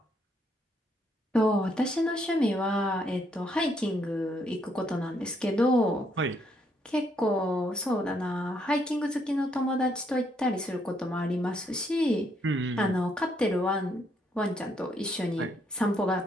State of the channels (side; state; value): both; normal; correlation 0.73